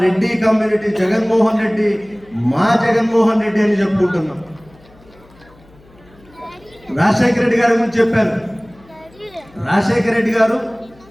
రెడ్డి కమ్యూనిటీ జగన్మోహన్ రెడ్డి, మా జగన్మోహన్ రెడ్డి అని చెప్పుకుంటున్నాం. రాజశేఖర రెడ్డి గారి గురించి చెప్పారు. రాజశేఖర రెడ్డి గారు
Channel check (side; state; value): left; noise; hum, 27 dB below the sound